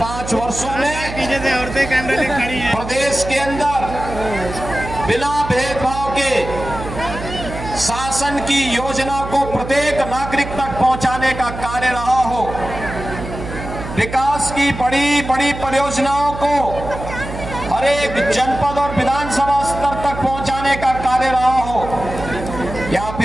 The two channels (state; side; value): noise; right; hum, 9 dB below the sound